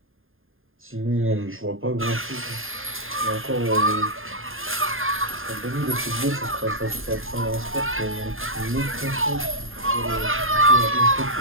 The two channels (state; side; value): late; left; 0.60 ms